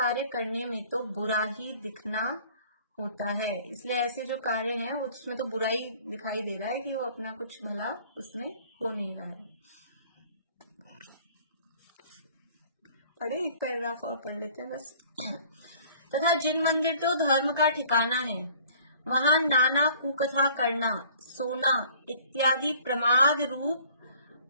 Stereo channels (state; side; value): inverted; both; correlation -0.53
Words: करने में तो बुरा ही दिखना होता है। इसलिए ऐसे जो कार्य हैं उसमें तो बुराई दिखाई दे रहा है कि वो अपना कुछ भला उसमें हो नहीं रहा है। पढ़े एक पैराग्राफ और पढ़ लेते हैं बस। तथा जिन मंदिर तो धर्म का ठिकाना है वहां नाना कुकथा करना, सोना इत्यादि प्रमाद रूप